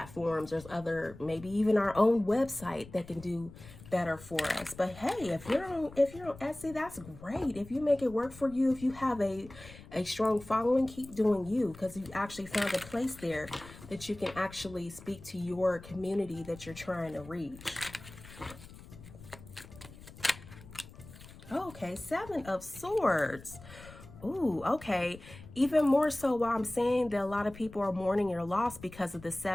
there's other, maybe even our own website that can do better for us. But hey, if you're on Etsy, that's great. If you make it work for you, if you have a strong following, keep doing you, because you actually found a place there that you can actually speak to your community that you're trying to reach. Okay, Seven of Swords. Ooh, okay. Even more so why I'm saying that a lot of people are mourning your loss because of the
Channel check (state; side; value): noise; left; rumble, 18 dB below the sound